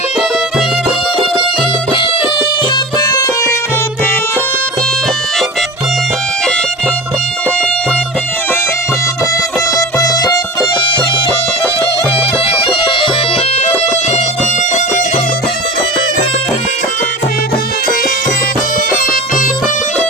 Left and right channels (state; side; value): normal; both; correlation 0.31